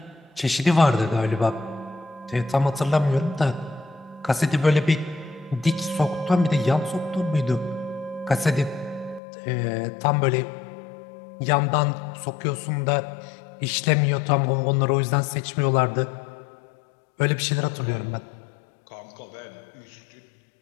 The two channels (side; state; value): right; drops out; at 9.2 s